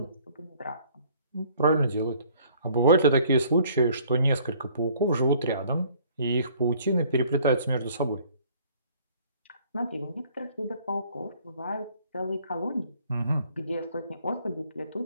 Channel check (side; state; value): both; inverted; correlation -0.58